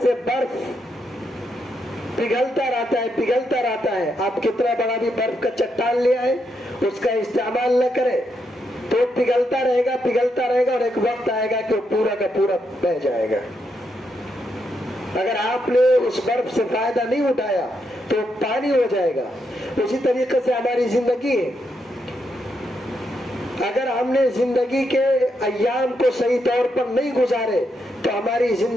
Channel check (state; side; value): normal; both; correlation 0.80